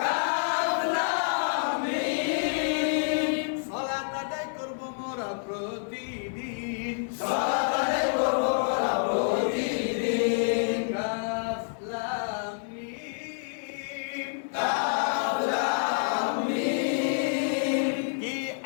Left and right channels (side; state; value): right; silent; digital silence